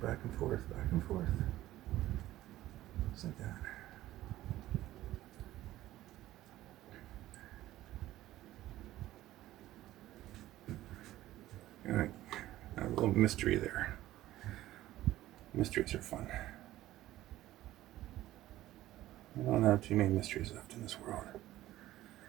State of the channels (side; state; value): left; quieter; 15.1 dB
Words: Back and forth, back and forth. Just like that. mystery there. Mysteries are fun. We don't have too many mysteries left in this world.